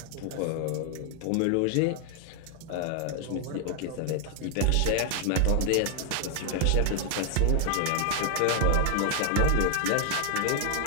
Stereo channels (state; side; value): different; both; correlation 0.00